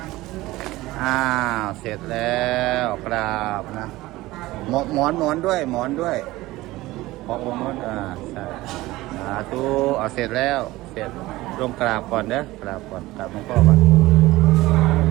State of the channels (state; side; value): quieter; left; 18.4 dB